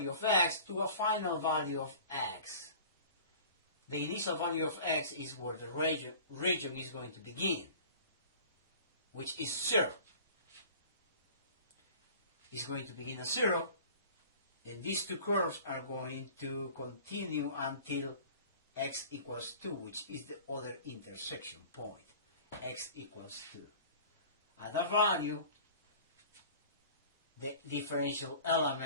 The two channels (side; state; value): both; inverted; correlation -0.44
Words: of x to a final value of x. The initial value of x is where the region is going to begin, which is 0. It's going to begin at 0, and these two curves are going to continue until x equals 2, which is the other intersection point. X equals 2. At that value, the differential